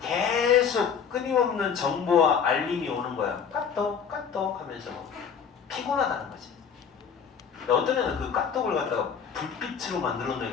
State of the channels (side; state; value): right; quieter; 6.9 dB